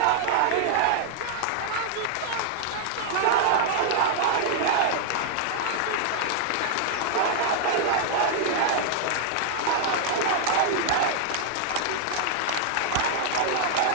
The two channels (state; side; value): different; both; correlation -0.01